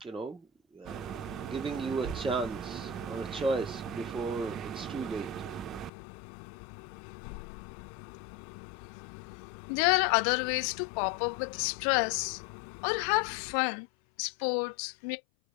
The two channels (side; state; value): right; drops out; at 5.9 s